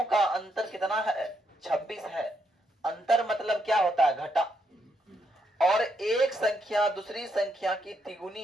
का अंतर कितना है? 26 है। अंतर मतलब क्या होता है? घटा। और एक संख्या दूसरी संख्या की तिगुनी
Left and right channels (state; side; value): normal; both; correlation 0.77